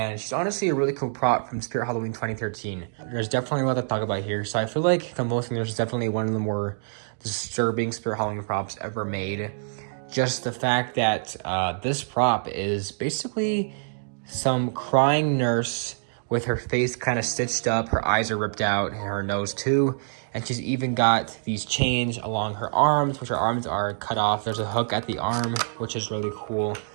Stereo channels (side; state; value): left; silent; digital silence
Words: she's honestly a really cool prop from Spirit Halloween 2013. There's definitely a lot to talk about here. So I feel like Convulsing nurse is definitely one of the more disturbing Spirit Halloween props ever made. Just the fact that this prop is basically some crying nurse with her face kind of stitched up, her eyes are ripped out, and her nose too. And she's even got these chains along her arms, which her arms are cut off. There's a hook at the arm, which is really cool.